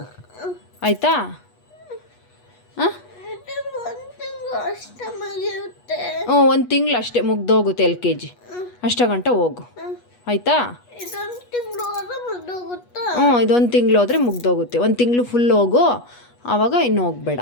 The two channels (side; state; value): right; late; 8.3 ms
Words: ಆಯಿತಾ? ಹಾಂ, 1 ತಿಂಗಳು ಅಷ್ಟೇ ಮುಗ್ದೋಗುತ್ತೆ LKG. ಅಷ್ಟ ಗಂಟೆ ಹೋಗು ಆಯಿತಾ? ಇದೊಂದು ತಿಂಗಳು ಹೋದರೆ ಮುಗ್ದೋಗುತ್ತೆ. 1 ತಿಂಗಳು ಫುಲ್ ಹೋಗು, ಆವಾಗ ಇನ್ನು ಹೋಗ್ಬೇಡ